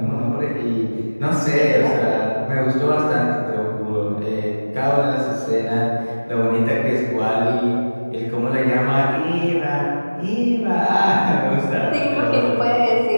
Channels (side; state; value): both; inverted; correlation -1.00